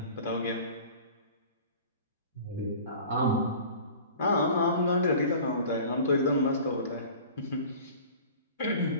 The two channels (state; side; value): inverted; both; correlation -0.42